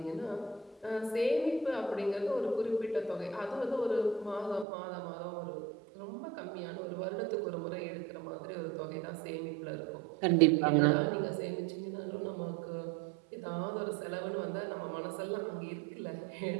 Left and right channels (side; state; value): left; drops out; at 4.7 s